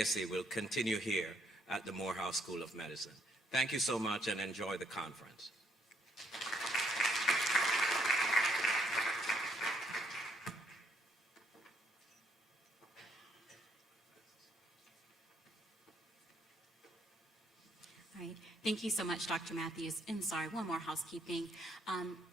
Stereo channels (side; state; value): both; normal; correlation 0.70